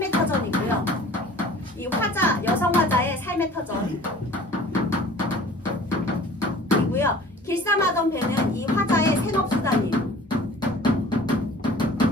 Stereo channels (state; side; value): normal; both; correlation 0.47